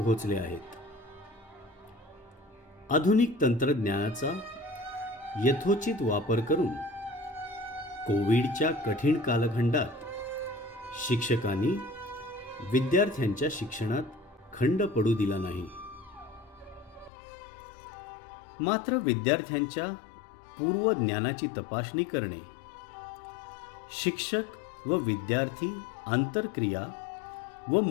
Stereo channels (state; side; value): drops out; right; at 17.1 s